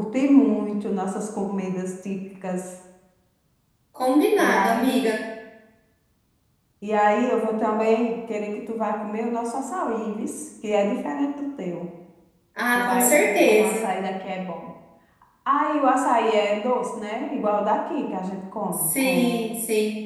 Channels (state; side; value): identical; both; correlation 1.00